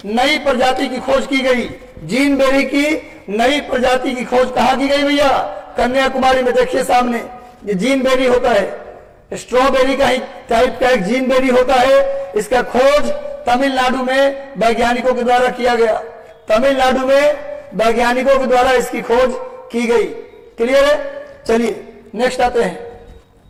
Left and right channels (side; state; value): both; identical; correlation 1.00